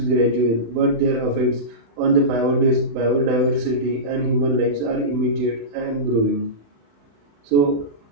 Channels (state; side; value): late; left; 35 ms